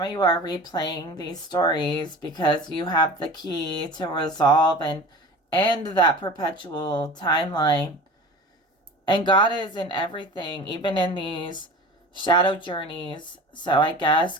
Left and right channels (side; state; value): both; normal; correlation 0.37